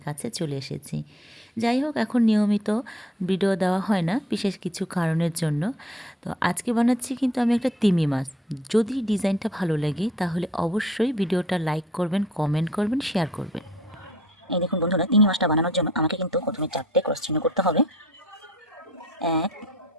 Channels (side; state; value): both; normal; correlation 0.55